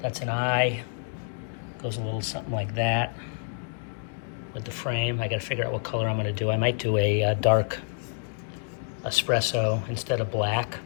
That's an eye. Goes a little something like that with the frame. I got to figure out what color I'm going to do. I might do a dark espresso instead of black,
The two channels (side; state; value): right; silent; digital silence